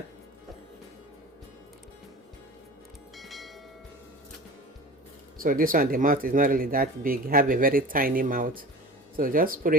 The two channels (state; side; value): normal; both; correlation 0.36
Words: So this one, the mouth is not really that big, you have a very tiny mouth. So just put